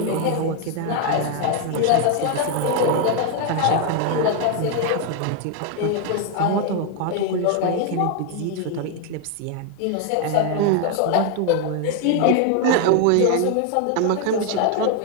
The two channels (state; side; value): different; both; correlation 0.01